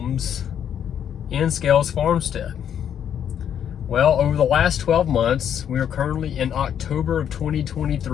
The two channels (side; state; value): right; quieter; 9.1 dB